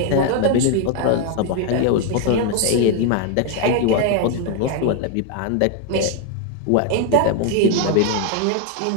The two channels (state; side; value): different; both; correlation 0.01